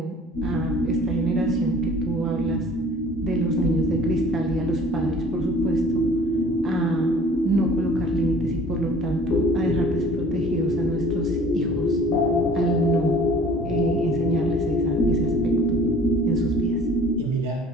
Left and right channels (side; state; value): both; normal; correlation 0.50